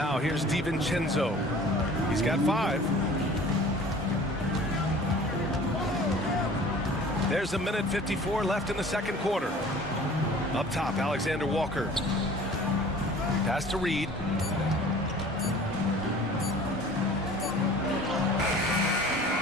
here's DiVincenzo. He's got 5. There's a minute 54 left in the second quarter. Up top, Alexander Walker. Pass to Reed.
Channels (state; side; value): normal; both; correlation 0.46